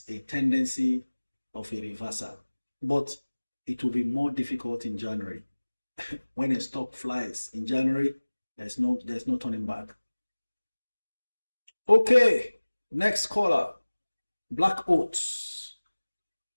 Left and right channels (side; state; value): both; inverted; correlation -1.00